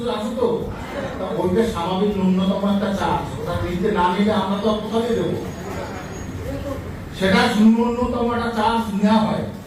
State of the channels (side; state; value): both; identical; correlation 1.00